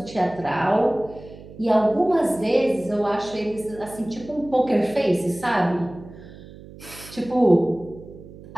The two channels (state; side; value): noise; right; hum, 18 dB below the sound